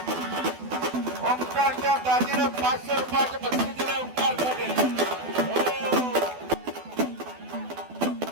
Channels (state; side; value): late; left; 12 ms